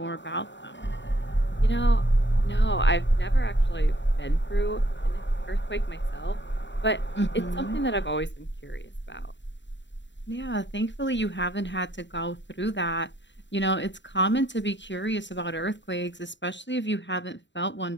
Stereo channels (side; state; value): right; late; 0.53 ms